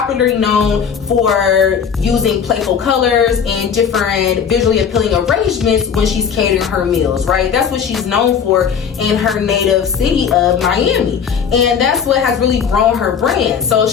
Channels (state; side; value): quieter; right; 7.1 dB